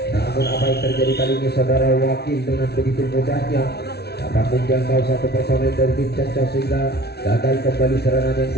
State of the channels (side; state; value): right; late; 0.48 ms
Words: Namun apa yang terjadi kali ini saudara Wakil dengan begitu mudahnya dapat menjangkau satu personel dari tim Castos sehingga gagal kembali serangan yang